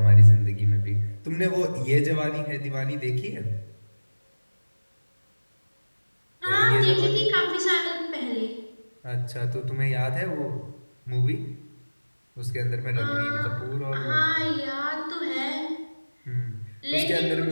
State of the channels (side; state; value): both; inverted; correlation -1.00